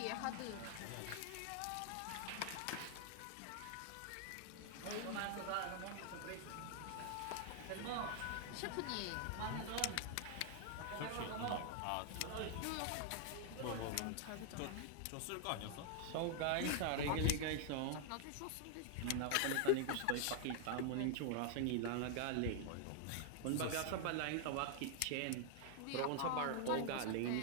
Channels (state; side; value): different; both; correlation 0.00